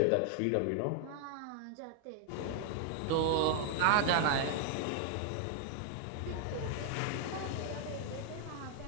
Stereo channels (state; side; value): different; both; correlation 0.00